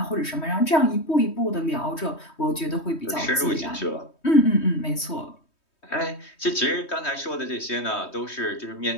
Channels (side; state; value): right; late; 3.2 ms